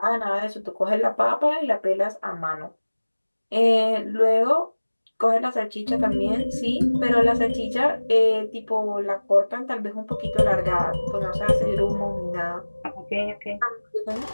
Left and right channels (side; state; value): both; inverted; correlation -1.00